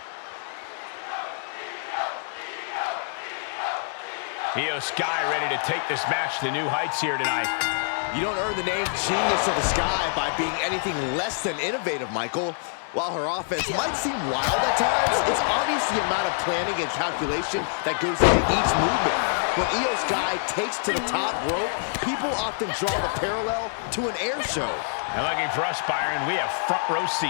Io Sky ready to take this match to new heights here tonight. You don't earn the name Genius of the Sky by being anything less than innovative, Michael. While her offense might seem wild at times, it's obvious the amount of planning and calculation that goes into each movement. When Io Sky takes to the top rope, people often draw the parallel to an air show. And lucky for us, Byron, we have front row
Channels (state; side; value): silent; right; digital silence